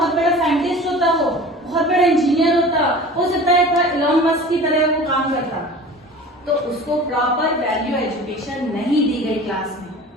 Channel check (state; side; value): normal; both; correlation 0.40